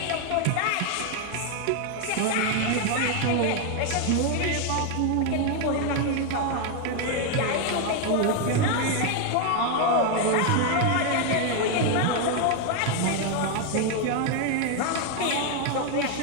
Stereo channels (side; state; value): both; different; correlation 0.01